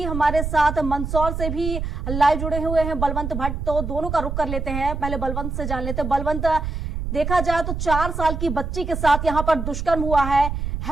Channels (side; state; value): right; noise; rumble, 4 dB below the sound